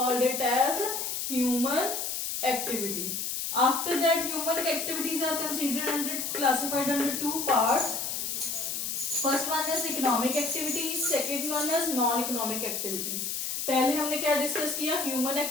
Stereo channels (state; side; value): noise; left; hiss, 2 dB below the sound